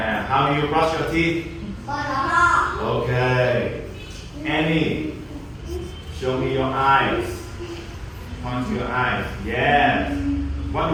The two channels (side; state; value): both; identical; correlation 1.00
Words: how do you brush your teeth? Okay. Annie, show me your eyes. Point to your eyes. Yes. What